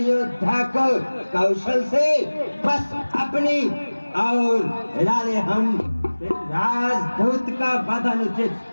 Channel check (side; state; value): both; inverted; correlation -1.00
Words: को कौशल से बस अपनी और हिला ले हम। राजदूत का वध